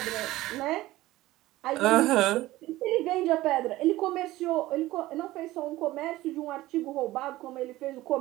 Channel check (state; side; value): quieter; left; 17.1 dB